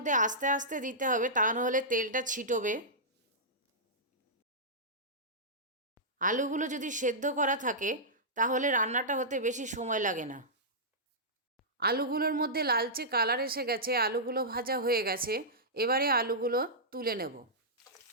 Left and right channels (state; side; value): normal; both; correlation -0.14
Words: আস্তে আস্তে দিতে হবে, তা নাহলে তেলটা ছিটবে। আলুগুলো যদি সেদ্ধ করা থাকে তাহলে রান্নাটা হতে বেশি সময় লাগে না। আলুগুলোর মধ্যে লালচে কালার এসে গেছে, আলুগুলো ভাজা হয়ে গেছে। এবারে আলুগুলো তুলে নেব।